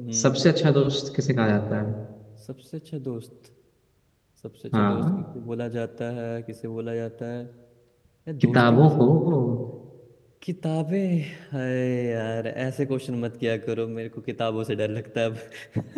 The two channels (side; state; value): both; identical; correlation 1.00